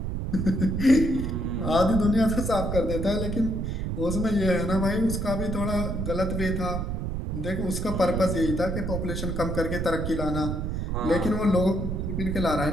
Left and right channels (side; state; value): right; noise; rumble, 2 dB below the sound